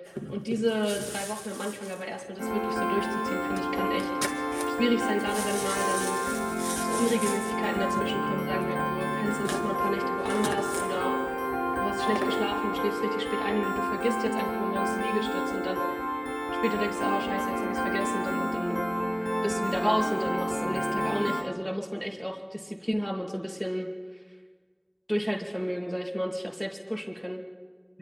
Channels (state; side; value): identical; both; correlation 1.00